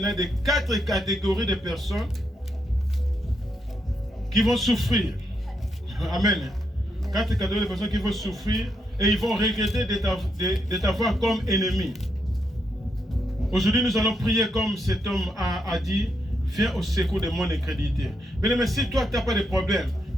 des 4 catégories de personnes qui vont souffrir. Amen. 4 catégories de personnes qui vont souffrir et ils vont regretter de t'avoir comme ennemi. Aujourd'hui, nous allons prier comme cet homme a dit, viens au secours de mon incrédulité. Mais si toi, tu n'as pas de problème,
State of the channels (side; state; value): both; normal; correlation 0.80